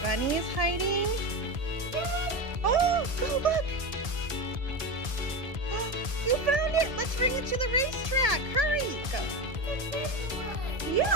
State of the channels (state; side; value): late; left; 1.7 ms